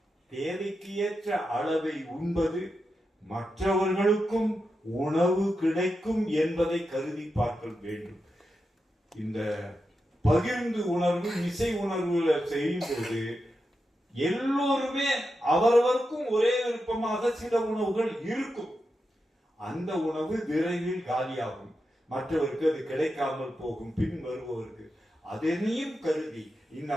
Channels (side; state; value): both; normal; correlation 0.88